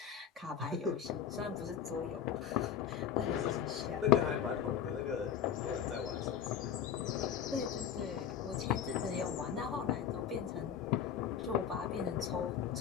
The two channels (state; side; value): quieter; right; 8.6 dB